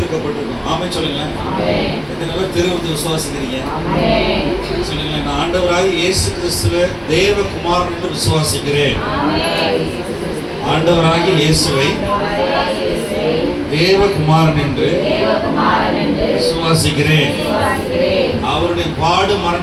ஆமே சொல்லுங்களேன். எத்தனை பேர் வந்து விசுவாசிக்கிறீங்க சொல்லுங்களேன். நான் ஆண்டவராக இயேசு கிறிஸ்துவ தேவகுமாரன் என்று விசுவாசிக்கிறேன். ஆண்டவராகிய இயேசுவை தேவகுமாரன் என்று விசுவாசிக்கிறேன். அவருடைய பாடு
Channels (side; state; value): both; identical; correlation 1.00